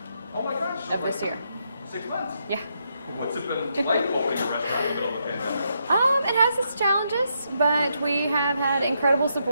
Oh my gosh. of this year. 6 months? Yeah. What's it been like opening a restaurant in the middle of the pandemic? It has its challenges, but we have had incredible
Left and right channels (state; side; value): inverted; both; correlation -0.79